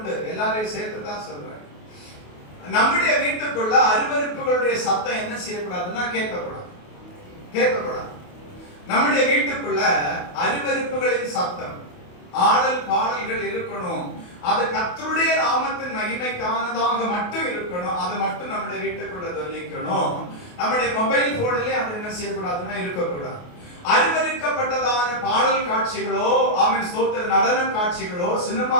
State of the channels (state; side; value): late; right; 28 ms